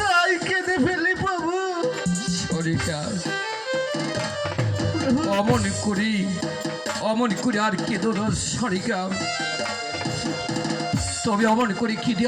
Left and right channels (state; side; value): identical; both; correlation 1.00